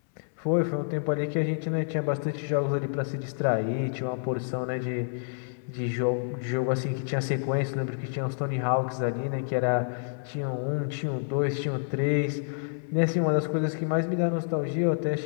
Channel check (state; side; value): silent; right; 59 dB below the other